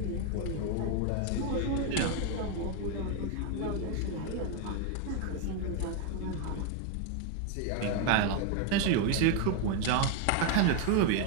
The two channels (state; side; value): different; both; correlation 0.01